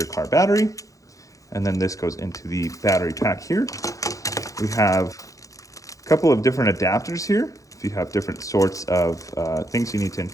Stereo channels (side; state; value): right; late; 0.16 ms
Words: car battery, and then this goes into the battery pack here. We have a couple of different adapters here, if you have different sorts of things you need to